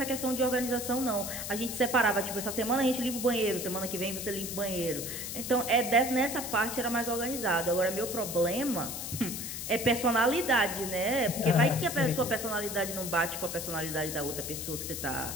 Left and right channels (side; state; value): left; noise; hiss, 6 dB below the sound